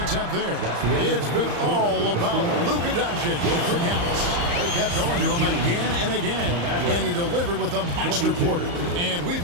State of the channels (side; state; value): left; late; 34 ms